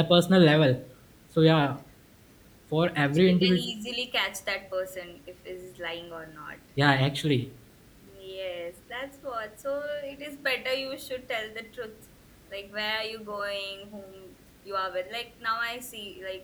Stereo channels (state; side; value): identical; both; correlation 1.00